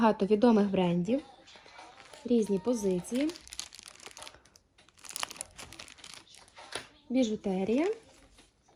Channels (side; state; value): both; identical; correlation 1.00